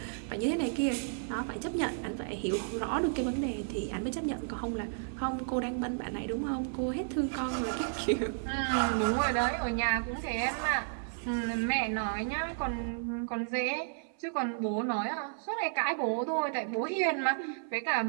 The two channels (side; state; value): left; silent; 56 dB below the other